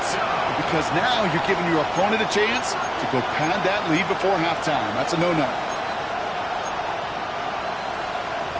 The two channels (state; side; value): identical; both; correlation 1.00